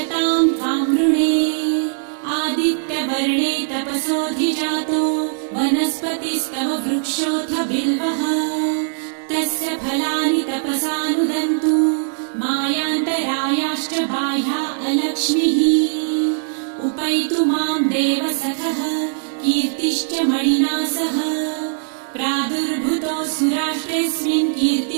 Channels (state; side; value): silent; left; digital silence